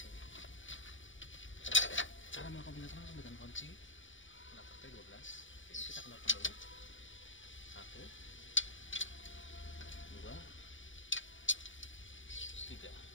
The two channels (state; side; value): late; right; 0.56 ms